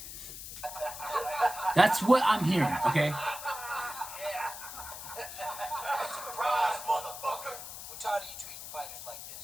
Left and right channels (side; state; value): left; noise; hiss, 10 dB below the sound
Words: That's what I'm hearing, okay? Surprise, motherfucker! We're tired of you treating fighters like